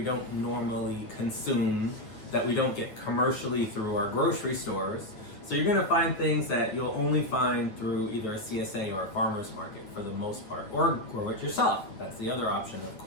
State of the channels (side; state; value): right; late; 9.5 ms